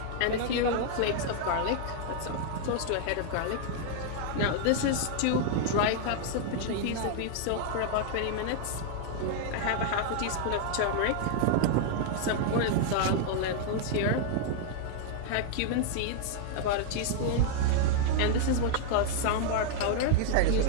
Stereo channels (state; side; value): different; both; correlation 0.00